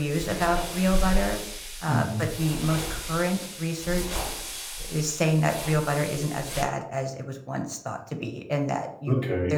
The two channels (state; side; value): identical; both; correlation 1.00